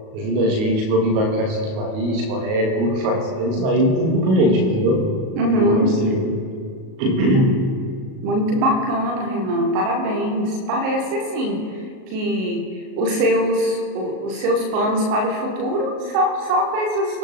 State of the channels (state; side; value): late; left; 38 ms